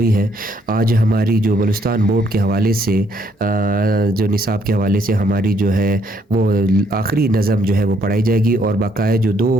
ہیں۔ آج ہماری جو بلوچستان بورڈ کے حوالے سے جو نصاب کے حوالے سے ہماری جو ہے وہ آخری نظم جو ہے وہ پڑھائی جائے گی، اور باقاعدہ جو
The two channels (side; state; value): both; normal; correlation 0.69